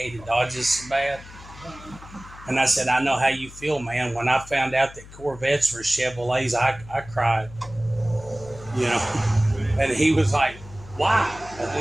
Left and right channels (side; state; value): left; noise; hum, 18 dB below the sound